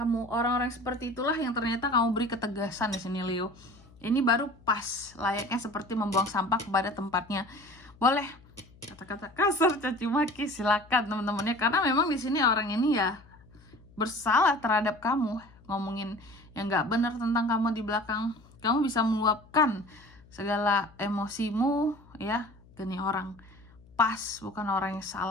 Orang-orang seperti itulah yang ternyata kamu beri ketegasan di sini Leo. Ini baru pas, layaknya seperti membuang sampah kepada tempatnya. Boleh kata-kata kasar, caci maki, silakan teman-temannya, karena memang di sini orang ini ya bersalah terhadap kamu, ngomongin yang nggak benar tentang kamu di belakang. Kamu bisa meluapkan segala emosimu ya ke nih orang, pas, bukan orang yang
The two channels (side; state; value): left; noise; hum, 25 dB below the sound